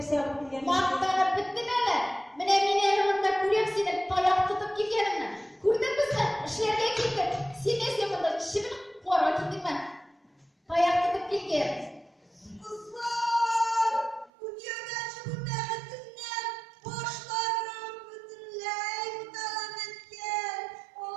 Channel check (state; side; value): drops out; left; at 14.3 s